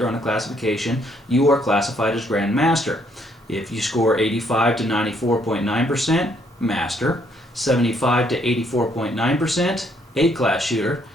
on a classification, you are classified as Grand Master. If you score 85 to 94.9%, Master, 75 to 84.9%, A-class shooter,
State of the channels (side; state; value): both; normal; correlation 0.69